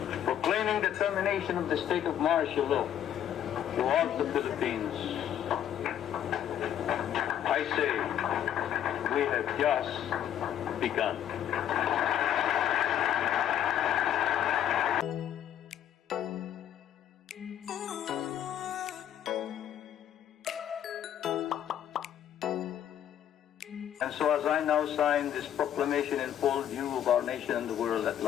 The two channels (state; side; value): quieter; right; 10.4 dB